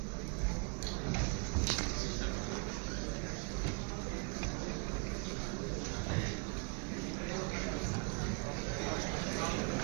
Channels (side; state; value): left; quieter; 34.7 dB